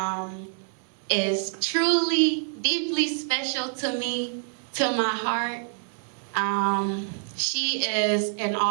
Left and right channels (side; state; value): left; silent; 61 dB below the other